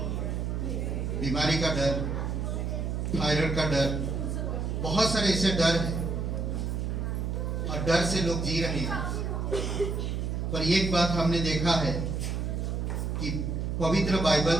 बीमारी का डर, थायराइड का डर, बहुत सारे ऐसे डर हैं और डर से लोग जी रहे हैं। पर एक बात हमने देखा है कि पवित्र बाइबल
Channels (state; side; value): noise; right; hum, 1 dB below the sound